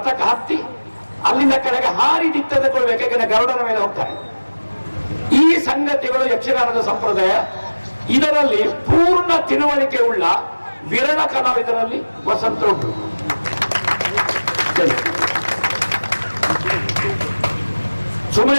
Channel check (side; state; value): both; inverted; correlation -1.00